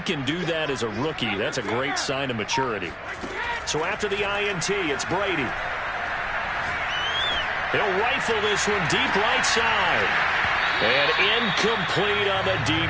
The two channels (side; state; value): both; identical; correlation 1.00